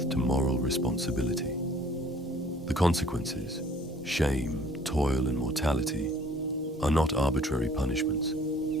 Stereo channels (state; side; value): normal; both; correlation 0.56